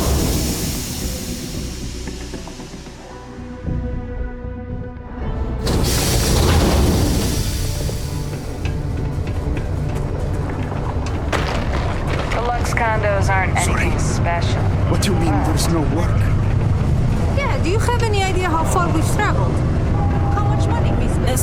Condos aren't anything special. What do you mean there's no work? Yeah, do you have any idea how far we've traveled? How much money we spent?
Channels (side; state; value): both; identical; correlation 1.00